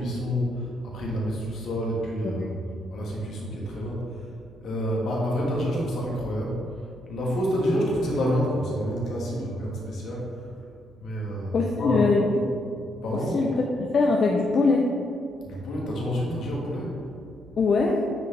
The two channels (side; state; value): both; normal; correlation 0.76